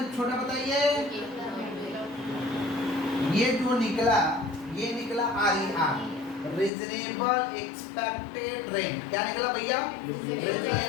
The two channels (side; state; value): right; drops out; at 6.7 s